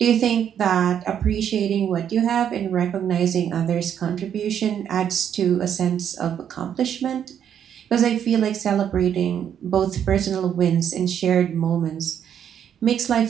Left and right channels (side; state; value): left; quieter; 9.0 dB